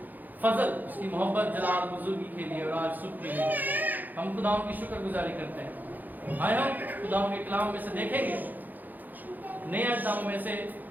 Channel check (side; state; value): left; late; 0.084 ms